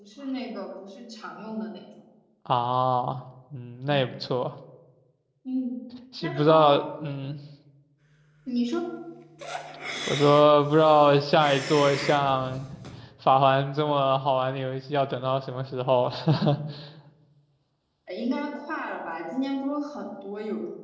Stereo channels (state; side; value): identical; both; correlation 1.00